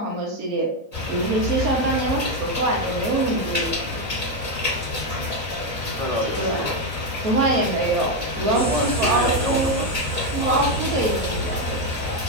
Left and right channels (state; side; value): late; left; 4.3 ms